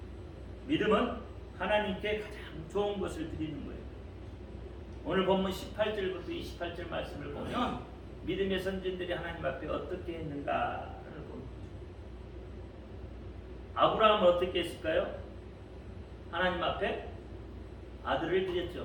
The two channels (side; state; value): both; identical; correlation 1.00